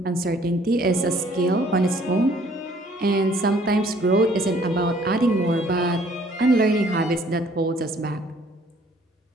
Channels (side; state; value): both; normal; correlation 0.59